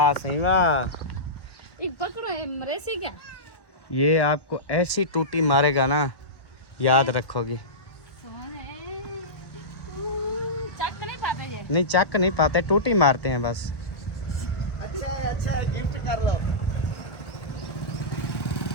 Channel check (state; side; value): late; right; 1.1 ms